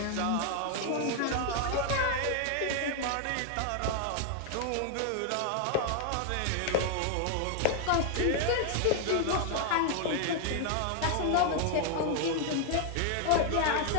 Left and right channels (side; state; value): both; different; correlation 0.00